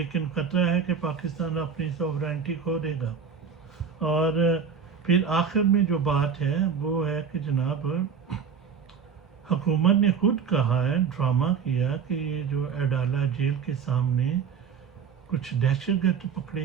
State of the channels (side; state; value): left; quieter; 6.5 dB